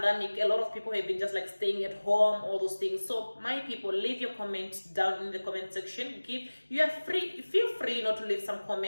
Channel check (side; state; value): both; inverted; correlation -1.00